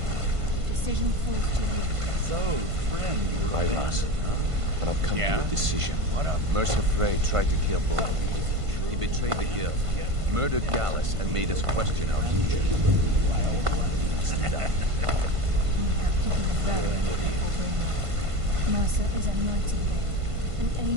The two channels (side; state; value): left; late; 1.5 ms